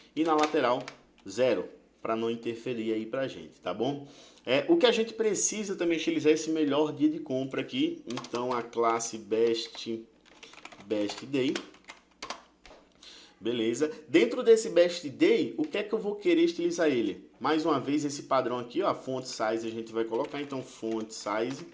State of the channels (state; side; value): identical; both; correlation 1.00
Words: e na lateral 0, para não interferir aí pra gente, tá bom? O que a gente precisa também utilizar esse melhor dia de compra aqui. Então a classe best day. Beleza? Dentro desse best day, o que é que eu vou querer estilizar ele? Mais uma vez esse padrão aqui, ó, font size a gente vai colocar. Então font size